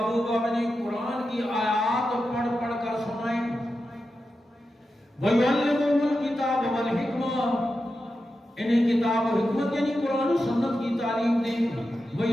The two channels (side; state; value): both; normal; correlation 0.90